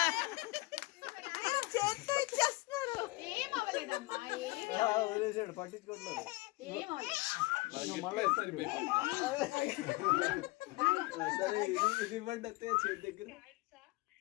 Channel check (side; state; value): right; quieter; 22.4 dB